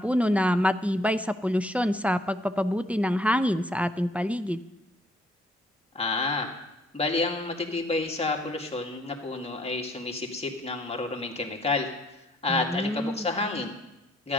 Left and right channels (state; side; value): normal; both; correlation 0.65